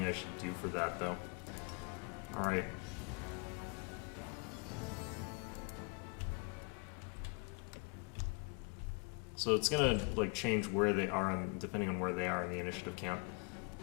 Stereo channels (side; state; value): right; quieter; 29.9 dB